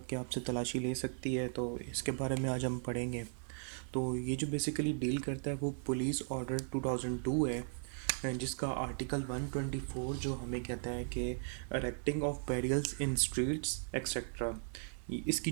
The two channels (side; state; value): left; silent; 53 dB below the other